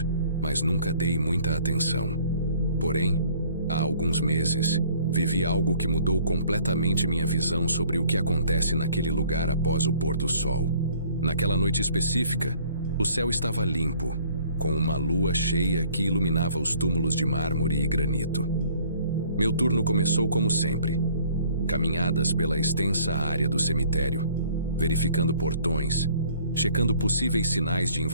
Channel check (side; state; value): both; inverted; correlation -0.57